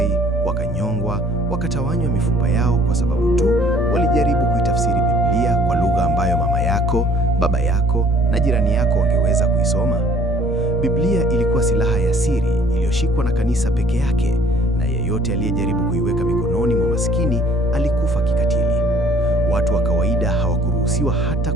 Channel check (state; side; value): normal; both; correlation 0.56